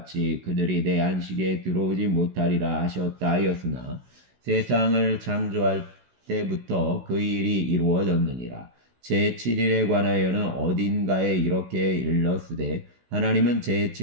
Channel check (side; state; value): left; late; 16 ms